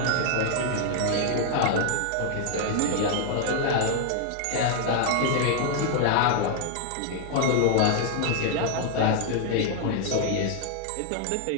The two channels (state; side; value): different; both; correlation 0.00